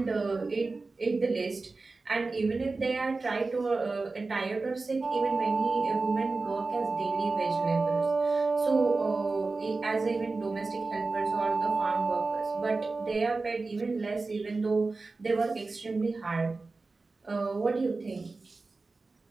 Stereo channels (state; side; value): quieter; left; 3.7 dB